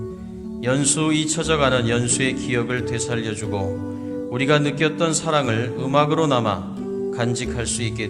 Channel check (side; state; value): both; identical; correlation 1.00